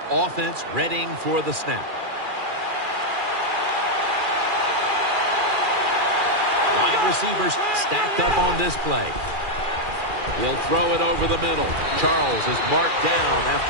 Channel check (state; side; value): late; left; 2.4 ms